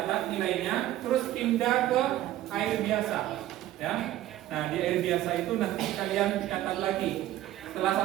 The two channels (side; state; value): left; quieter; 14.1 dB